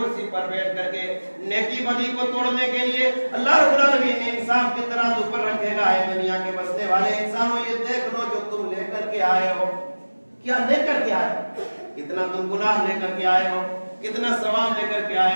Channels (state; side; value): inverted; both; correlation -1.00